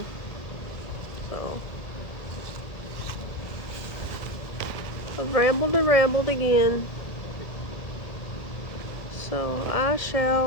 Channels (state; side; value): late; right; 1.6 ms